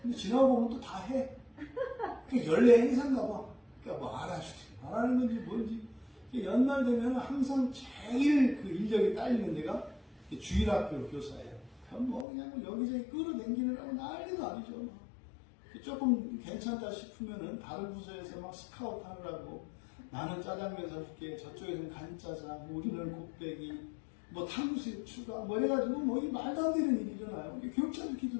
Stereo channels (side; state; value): right; drops out; at 12.2 s